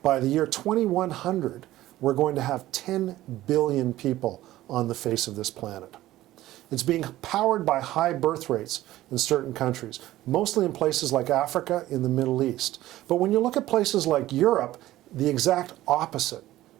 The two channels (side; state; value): left; quieter; 15.4 dB